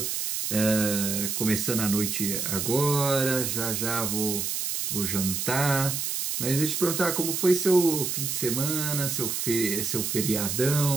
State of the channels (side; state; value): right; noise; hiss, 2 dB below the sound